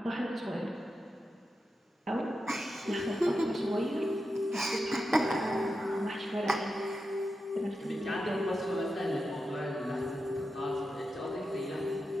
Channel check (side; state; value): both; normal; correlation 0.89